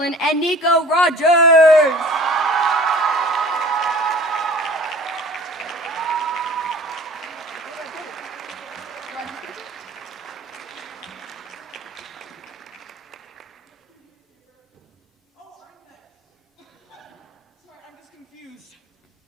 and Nico Rogers.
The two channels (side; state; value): both; normal; correlation 0.46